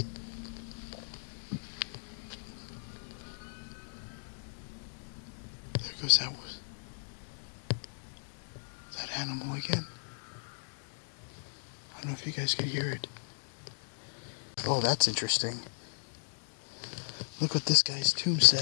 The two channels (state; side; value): silent; right; digital silence